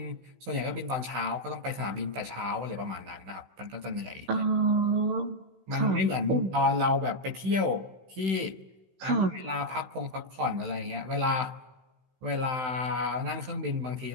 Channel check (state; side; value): late; left; 16 ms